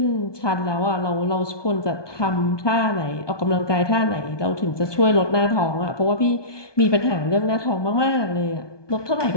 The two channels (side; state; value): right; late; 1.2 ms